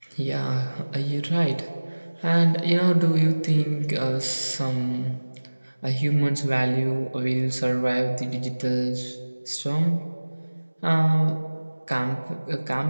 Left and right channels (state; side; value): inverted; both; correlation -1.00